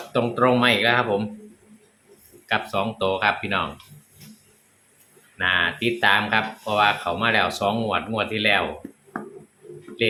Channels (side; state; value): both; identical; correlation 1.00